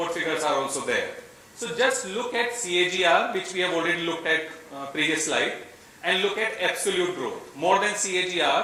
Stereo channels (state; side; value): identical; both; correlation 1.00